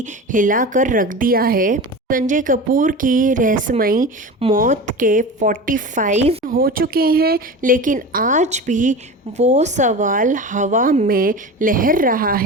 हिलाकर रख दिया है। संजय कपूर की रहस्यमयी मौत के 45 हो चुके हैं, लेकिन आज भी वो सवाल हवा में लहर रहा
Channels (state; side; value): normal; both; correlation 0.30